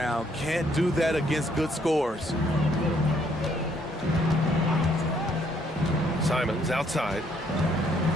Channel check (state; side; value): normal; both; correlation 0.68